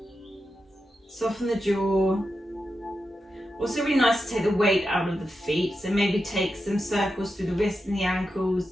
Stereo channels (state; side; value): normal; both; correlation 0.89